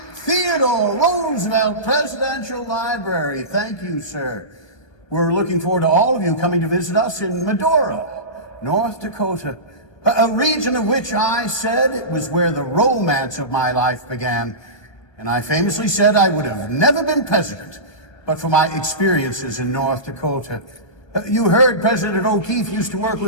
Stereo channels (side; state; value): right; late; 1.3 ms